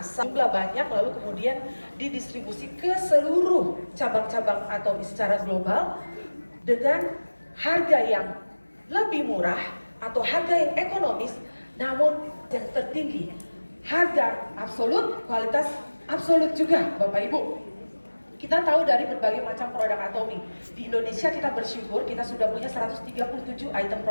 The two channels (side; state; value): both; inverted; correlation -1.00